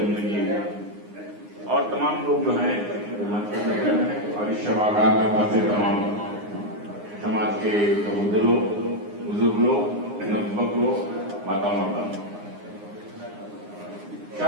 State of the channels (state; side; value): late; left; 9.7 ms